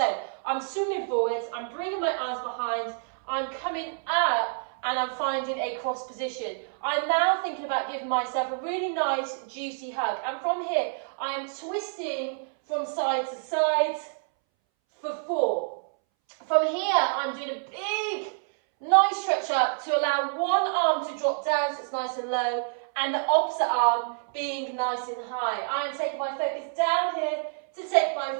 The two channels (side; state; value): left; silent; 60 dB below the other